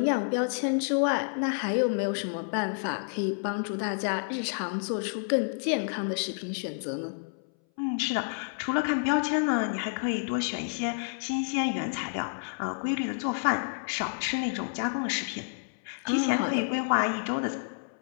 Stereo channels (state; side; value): silent; right; 58 dB below the other